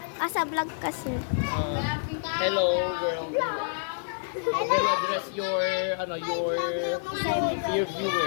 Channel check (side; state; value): right; silent; 59 dB below the other